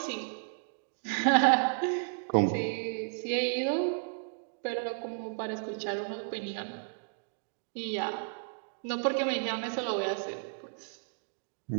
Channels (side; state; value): left; silent; digital silence